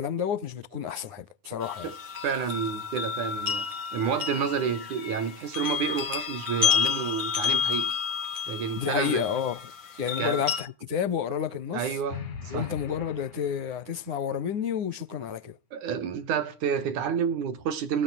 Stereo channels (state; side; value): late; left; 9.8 ms